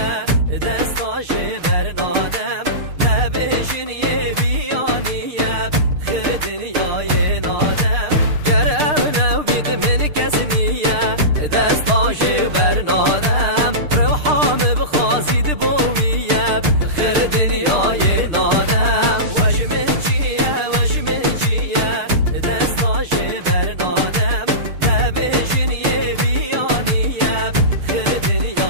دستاش برنادم نبیشن یه بیانیه خیر دنیای نادم گرم نو بید من کس نیه دستاش برنادم روحام بخوازید بویه خیر دنیای نادم وجمن چیه دستاش برنادم نبیشن یه بیانیه خیر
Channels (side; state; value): left; late; 6.6 ms